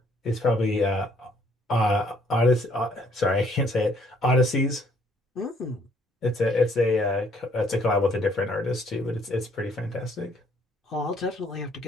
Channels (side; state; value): both; normal; correlation 0.64